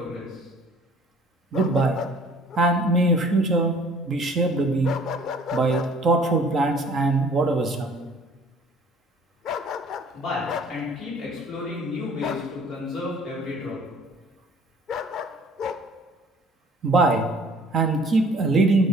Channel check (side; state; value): both; normal; correlation 0.53